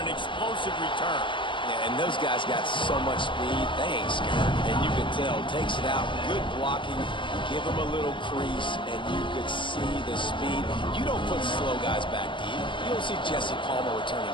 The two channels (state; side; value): late; right; 0.24 ms